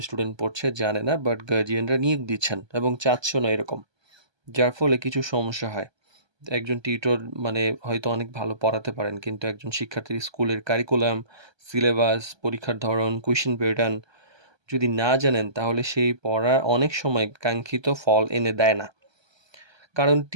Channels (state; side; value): late; left; 1.2 ms